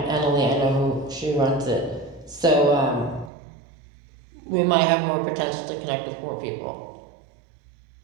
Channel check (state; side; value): drops out; left; at 3.3 s